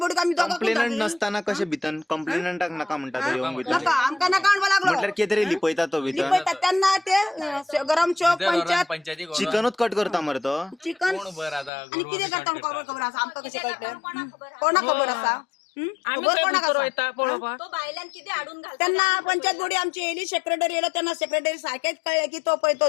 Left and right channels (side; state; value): right; drops out; at 11.7 s